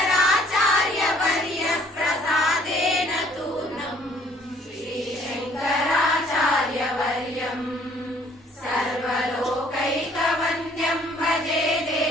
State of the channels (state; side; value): normal; both; correlation 0.60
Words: प्रसादेन तूर्णम् श्रीशङ्कराचार्यवर्यम् सर्वलोकैकवन्द्यं भजे